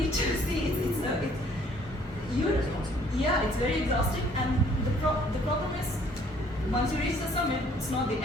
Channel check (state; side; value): normal; both; correlation 0.60